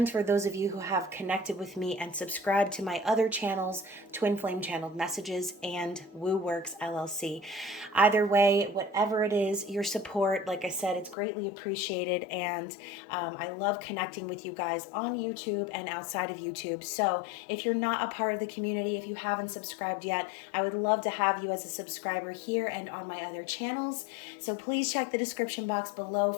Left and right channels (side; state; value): right; drops out; at 11.2 s